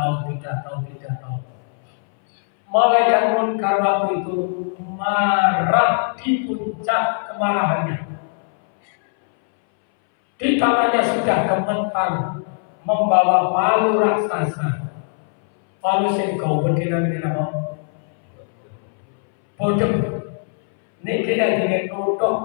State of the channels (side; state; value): right; silent; 63 dB below the other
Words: Malaikat munkar waktu itu marah di puncak kemarahannya. Di tangannya sudah gemetar membawa palu raksasa. Palu sing kau berdiri apa? Bodoh. Ini kira dengan